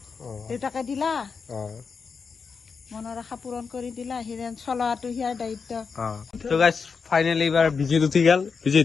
দেউতাকে দিলা অ মনৰ আশা পূৰণ কৰি দিলা হিৰেন চলোৱাটো হিয়াৰ দায়িত্ব তো গাইস ফাইনালি এবাৰ বিজিত উঠি গেল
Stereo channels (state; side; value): quieter; right; 5.4 dB